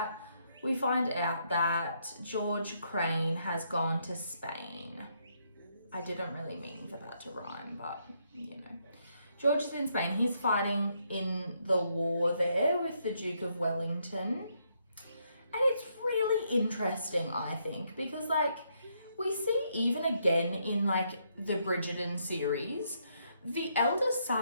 that George Crane has gone to Spain. I didn't really mean for that to rhyme, but you know. George is in Spain. He's fighting in the war there with the Duke of Wellington. And it's really interesting, I think, because like, we see even again in like the Bridgerton series, the eldest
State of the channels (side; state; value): both; inverted; correlation -0.75